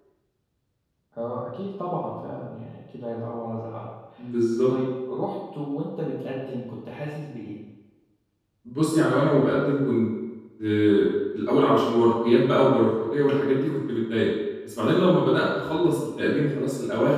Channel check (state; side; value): identical; both; correlation 1.00